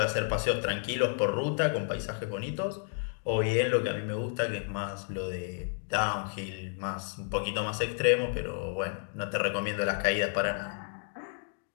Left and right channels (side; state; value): right; silent; 57 dB below the other